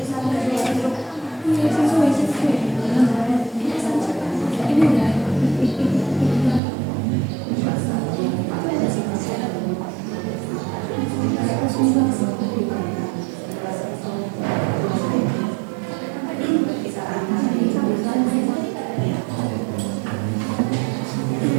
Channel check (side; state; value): left; drops out; at 6.6 s